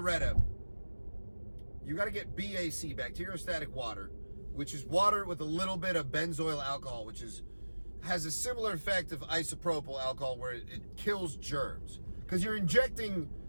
you got to get BAC, bacteriostatic water, which is water with a little bit of benzoyl alcohol, which has a similar effect of isopropyl alcohol where it kills germs. Because you're injecting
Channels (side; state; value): both; inverted; correlation -1.00